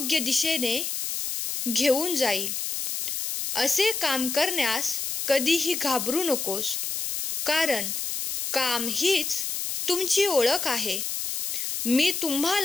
दिशेने घेऊन जाईल असे काम करण्यास कधीही घाबरू नकोस. कारण काम हीच तुमची ओळख आहे. मी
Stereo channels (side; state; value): left; noise; hiss, 3 dB below the sound